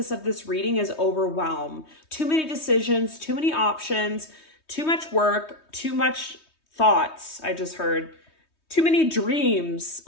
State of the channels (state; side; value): late; right; 3.2 ms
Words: of this reading is overwhelmed. Too many decisions, too many options, too much work, too much thoughts, I just heard. Too many dreams.